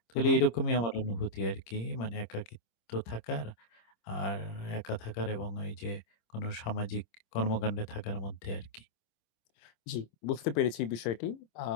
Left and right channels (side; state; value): right; late; 26 ms